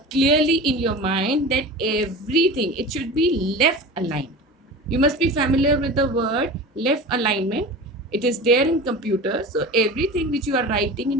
clearly in your mind, that everything, it should be left aligned. You must be familiar with the word left alignment. It is there in computer. So everything which you are writing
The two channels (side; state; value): both; normal; correlation 0.33